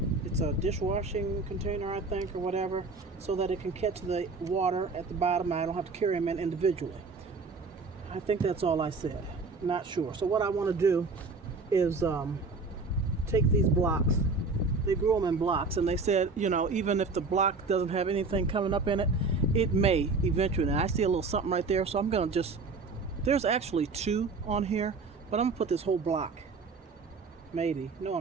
It's a dishwashing container, I think, or whatever, so that it can catch the water at the bottom. I don't have to carry them in individually. I think that's all I said. Not sure. So what I want to do is take these blocks. They grew them in blocks, and they said, you know, even if the block doesn't have anything coming up in it, it may eventually. And I see a little something right there, so I'm going to just, there's actually two on here, but I'm going to put this whole block. Maybe. No,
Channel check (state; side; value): quieter; left; 4.0 dB